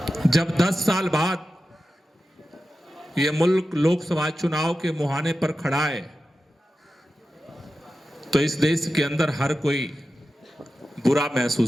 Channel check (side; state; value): both; normal; correlation 0.92